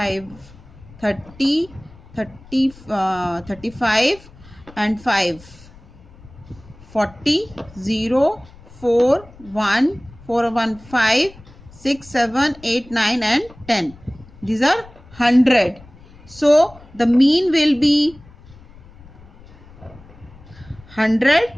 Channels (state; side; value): noise; left; rumble, 22 dB below the sound